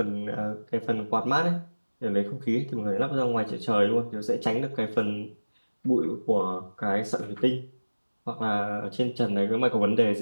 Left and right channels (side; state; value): both; inverted; correlation -1.00